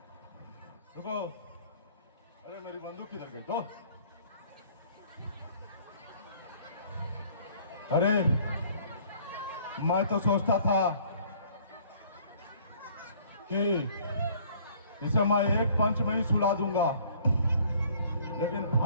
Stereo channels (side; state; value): both; inverted; correlation -0.57